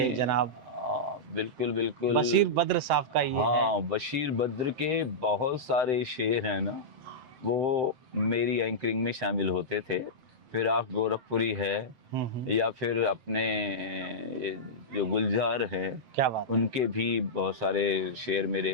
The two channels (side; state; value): left; late; 7.8 ms